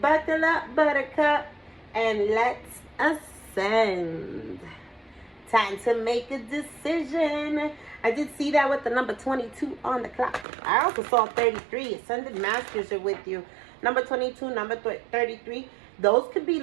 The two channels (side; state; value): left; drops out; at 10.5 s